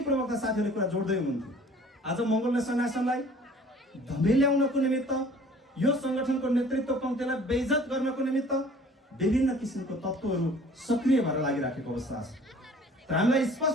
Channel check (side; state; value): both; normal; correlation 0.50